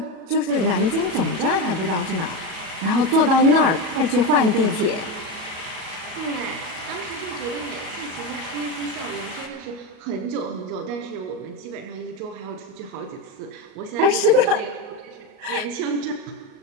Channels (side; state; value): left; late; 37 ms